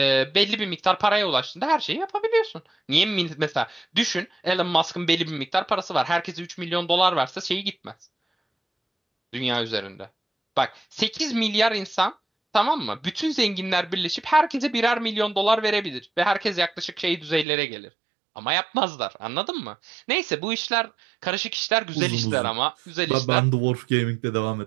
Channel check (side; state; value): left; drops out; at 17.4 s